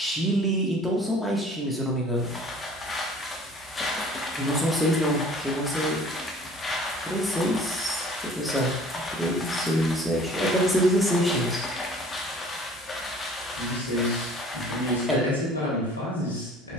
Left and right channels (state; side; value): normal; both; correlation 0.50